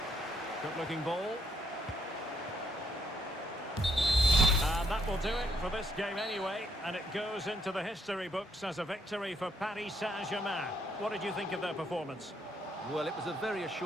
Good-looking ball. And that will do it for this game anyway, and it goes into the history books as a victory for Paris Saint-Germain. What did you think of their performance? Well, it was a very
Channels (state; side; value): normal; both; correlation 0.73